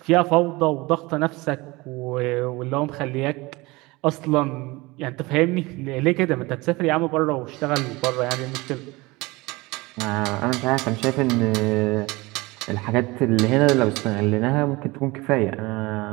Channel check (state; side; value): quieter; left; 22.7 dB